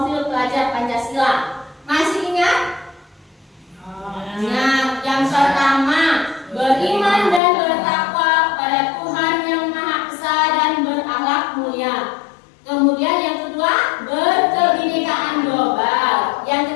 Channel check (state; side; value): drops out; right; at 7.4 s